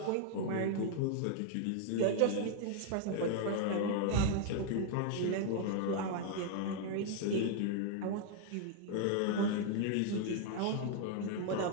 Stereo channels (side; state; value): both; different; correlation 0.00